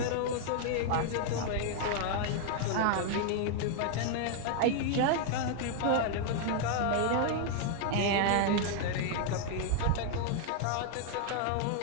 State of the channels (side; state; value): both; different; correlation 0.00